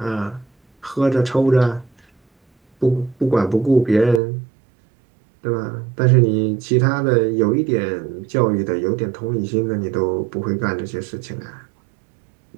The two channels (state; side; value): drops out; left; at 4.2 s